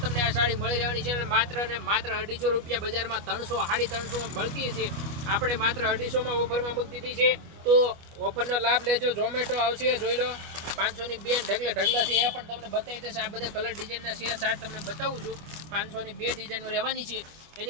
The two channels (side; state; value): left; late; 25 ms